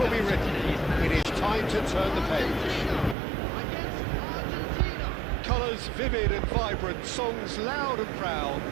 be written. It is time to turn the page. Colours vivid and vibrant, songs loud and proud.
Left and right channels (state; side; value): drops out; left; at 3.2 s